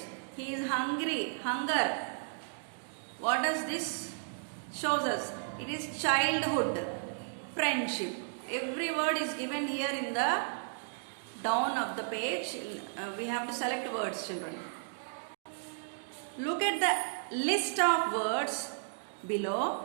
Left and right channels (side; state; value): left; silent; digital silence